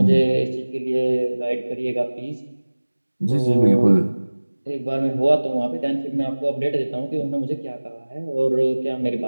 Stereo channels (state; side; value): inverted; both; correlation -1.00